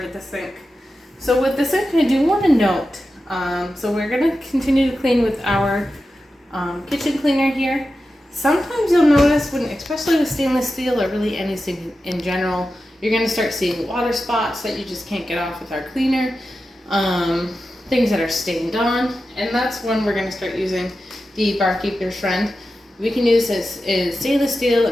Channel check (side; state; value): both; normal; correlation 0.92